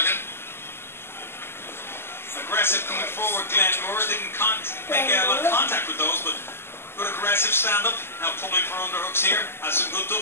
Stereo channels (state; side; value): late; right; 0.12 ms